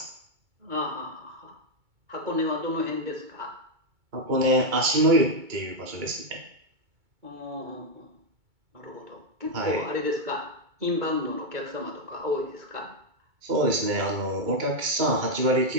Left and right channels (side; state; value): left; late; 2.2 ms